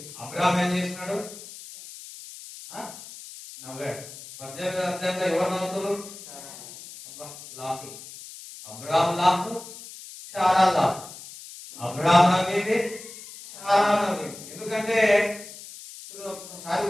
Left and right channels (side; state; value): left; noise; hiss, 15 dB below the sound